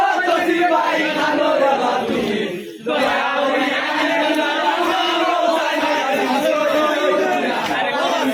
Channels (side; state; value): both; identical; correlation 1.00